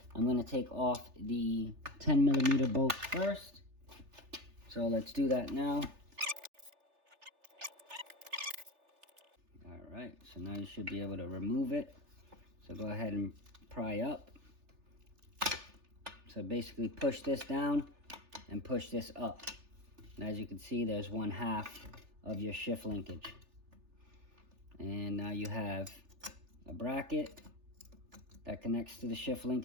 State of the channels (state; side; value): late; left; 3.4 ms